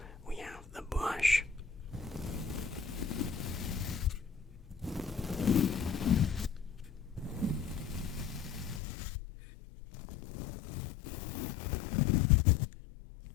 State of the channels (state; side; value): drops out; right; at 8.8 s